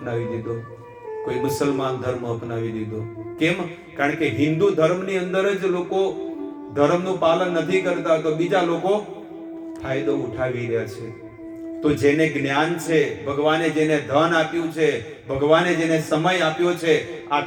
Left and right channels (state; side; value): identical; both; correlation 1.00